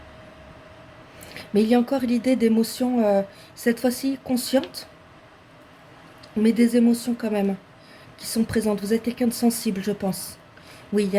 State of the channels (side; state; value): both; identical; correlation 1.00